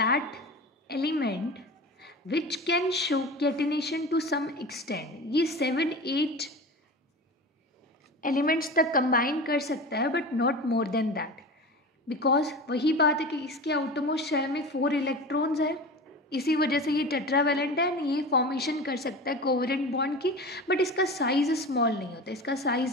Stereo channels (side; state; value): both; normal; correlation 0.31